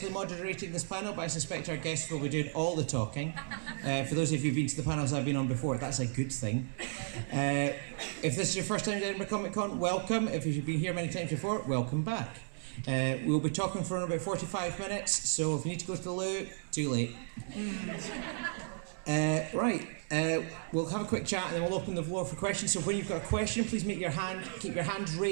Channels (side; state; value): left; silent; digital silence